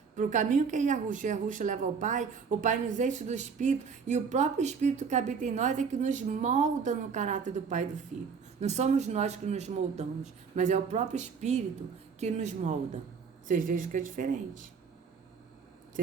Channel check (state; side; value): quieter; left; 5.9 dB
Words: para o caminho que é Yahushua leva ao Pai, o Pai nos enche do Espírito, e o próprio Espírito que habita em nós é que nos molda no caráter do Pai e do Filho. Não somos nós que nos moldamos, mas é o próprio Espírito que nos molda. Vocês vejam que é diferente.